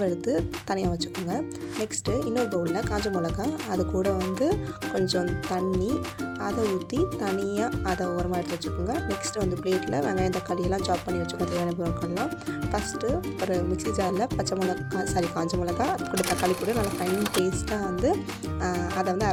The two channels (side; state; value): both; identical; correlation 1.00